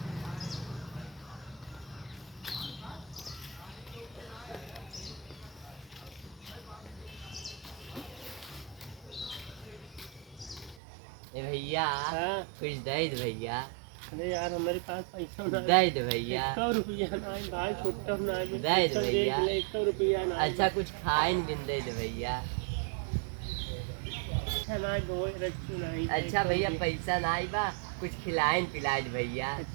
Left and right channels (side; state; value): left; drops out; at 10.8 s